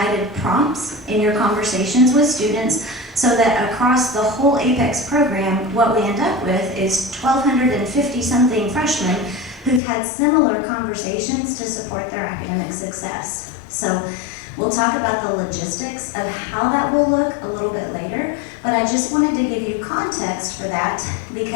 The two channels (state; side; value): drops out; right; at 9.8 s